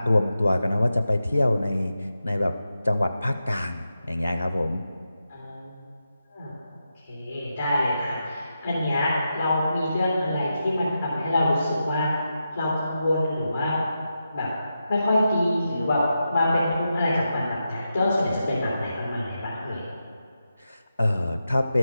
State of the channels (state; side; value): inverted; both; correlation -0.88